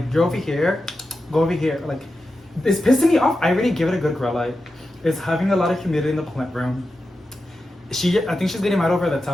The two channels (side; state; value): both; normal; correlation 0.91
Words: you're over here, go over here. Like, it's pissing me off. I already give it a good grow light. It's having a lot of humidity in the plant room. I think she's getting mad over the